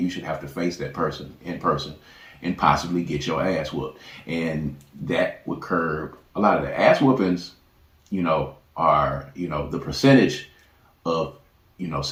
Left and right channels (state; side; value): identical; both; correlation 1.00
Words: should have to face that person in person and possibly get your ass whooped. And that would curb a lot of the ass whoopings, are, the percentage of,